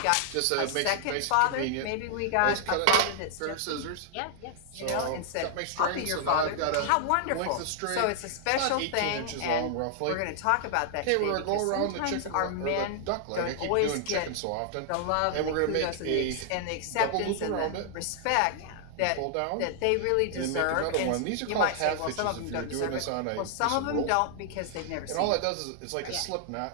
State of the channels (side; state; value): both; different; correlation 0.00